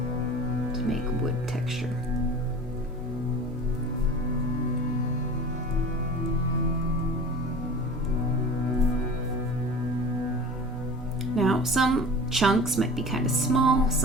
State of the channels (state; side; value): normal; both; correlation 0.38